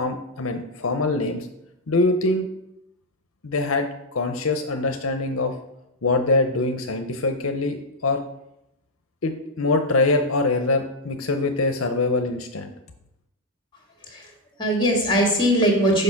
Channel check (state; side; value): normal; both; correlation 0.02